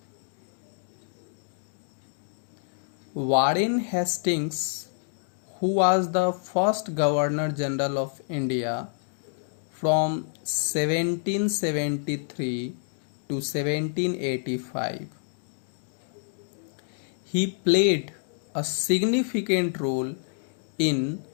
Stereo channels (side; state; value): right; silent; digital silence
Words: Warren Hastings, who was the first Governor General of India from 1773 to 1785, he played a significant role in